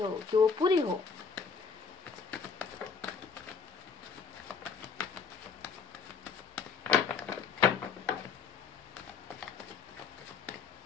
कि वो पूरी हो।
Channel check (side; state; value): right; quieter; 5.4 dB